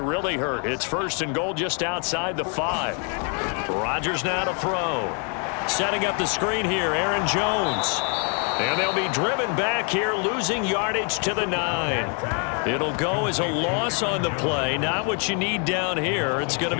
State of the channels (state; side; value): quieter; right; 39.0 dB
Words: hurt. It's 1st and goal just outside the 5. Rodgers now to throw. Setting up the screen here, Aaron Jones. And they'll be driven back here, losing yardage to the 9. It'll go as a loss on the play. Not what you need down here. It's going to